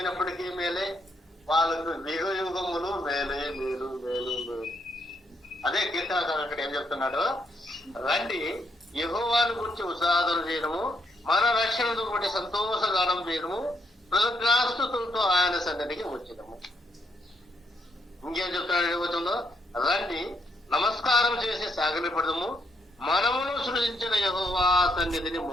మేలే, వాళ్ళకు యుగ యుగములు మేలే మేలు మేలు మేలు. అదే కీర్తనకారుడు అక్కడ ఏం చెప్తున్నాడు, రండి యెహోవాను గురించి ఉత్సాహం చేయడము, మన రక్షణను బట్టి సంతోషగానం చేయడము, కృతజ్ఞాస్తుతులతో ఆయన సన్నిధికి వచ్చేదము. ఇంకేం చెప్తున్నాడు ఏమవుతుందో, రండి నమస్కారం చేసి సాగిలపడదము, మనమును సృజించిన యెహోవా సన్నిధిని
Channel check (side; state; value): both; normal; correlation 0.75